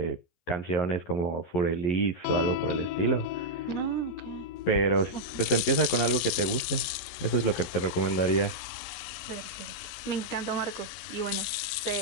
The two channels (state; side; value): late; right; 11 ms